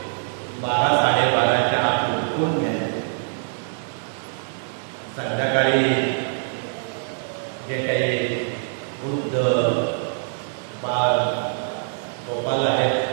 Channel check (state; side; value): silent; left; 55 dB below the other